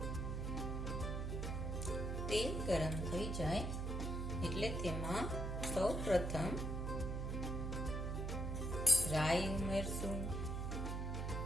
તેલ ગરમ થઈ જાય એટલે તેમાં સૌ પ્રથમ રાઈ ઉમેરશું.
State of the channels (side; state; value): right; noise; hum, 2 dB below the sound